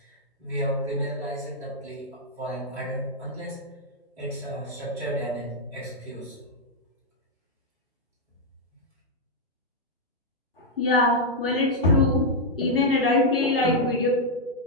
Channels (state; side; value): normal; both; correlation -0.03